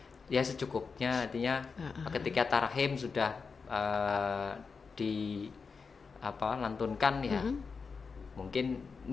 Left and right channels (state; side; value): quieter; right; 5.1 dB